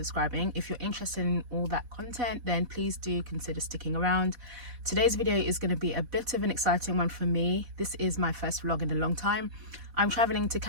If you're interested in all that content, then please do consider sticking around. Today's video is going to be a bit of an exciting one for me. This is my first vlog in a long time. I'm traveling to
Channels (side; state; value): left; late; 4.1 ms